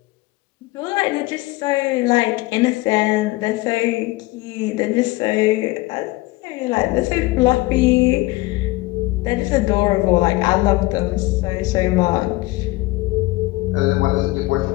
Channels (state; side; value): quieter; right; 20.6 dB